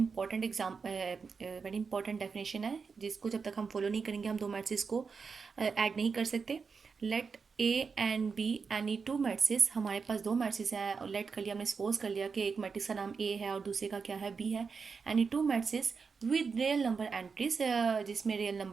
very important definition है, जिसको जब तक हम फॉलो नहीं करेंगे हम दो मैट्रिसेस को ऐड नहीं कर सकते। Let A and B any two matrices, हमारे पास दो मैट्रिसेस हैं और लेट कर लिया, हमने सपोज कर लिया कि एक मैट्रिक्स का नाम ए है और दूसरे का क्या है, बी है। Any two matrices with real number entries, जिसमें रियल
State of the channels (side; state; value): left; quieter; 5.3 dB